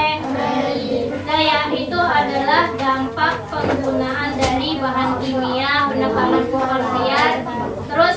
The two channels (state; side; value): identical; both; correlation 1.00